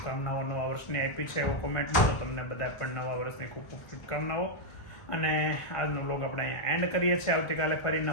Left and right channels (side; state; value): right; late; 1.4 ms